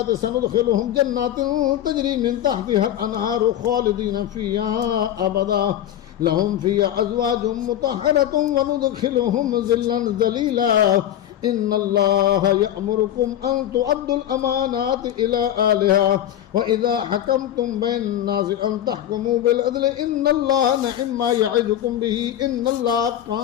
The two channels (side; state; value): right; quieter; 11.5 dB